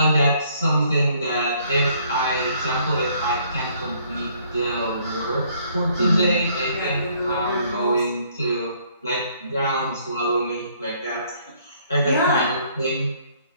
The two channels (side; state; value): both; inverted; correlation -0.64